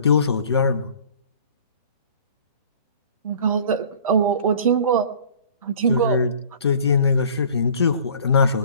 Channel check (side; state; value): both; inverted; correlation -0.48